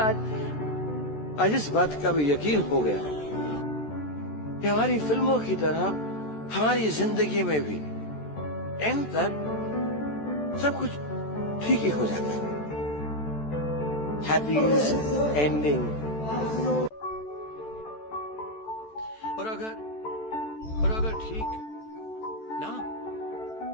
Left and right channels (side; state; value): right; late; 14 ms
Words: आज इस बात का भी यकीन हो गया कि हमारी फिल्मों की तरह हमारी जिंदगी में भी एंड तक सब कुछ ठीक ही हो जाता है। Happy ending. और अगर ठीक ना